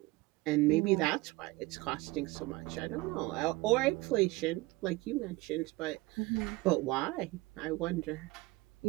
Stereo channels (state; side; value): quieter; left; 21.2 dB